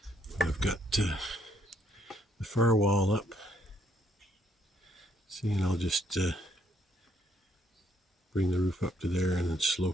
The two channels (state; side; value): normal; both; correlation 0.70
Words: I've got the far wall up. See, and I'll just bring the roof up to there and then